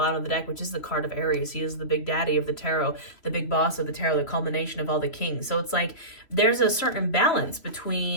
of the deck, which is the card of Aries. He is the big daddy of the tarot, the big boss of the tarot, the culmination of all the kings. So it's like there's a certain balance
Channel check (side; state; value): right; late; 3.0 ms